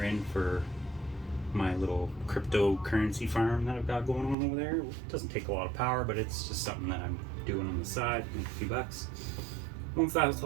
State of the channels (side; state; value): left; drops out; at 4.4 s